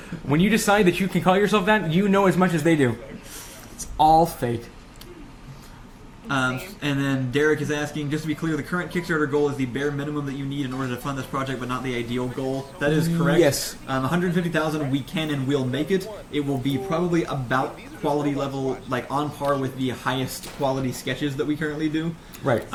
when you decide that you can call yourself that, you know as much as they do. It's all fake. And then Derek is asking, just to be clear, the current Kickstarter goal is the bare minimum that you need in order to fund this project, but not the ideal goal. That is correct. Yes. 150,000, we can and will make it. It will be probably about quality level, like on par with the highest quality sketches that we currently do. Right.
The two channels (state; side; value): identical; both; correlation 1.00